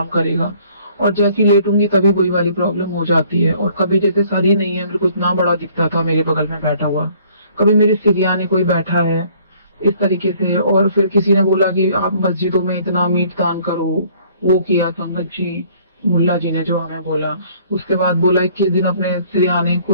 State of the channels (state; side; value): inverted; both; correlation -0.59